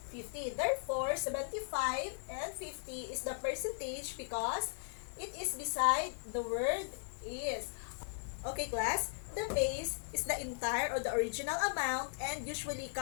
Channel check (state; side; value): silent; right; digital silence